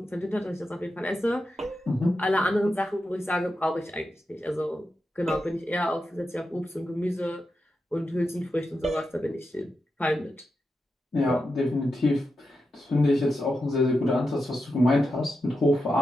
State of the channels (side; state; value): both; normal; correlation 0.88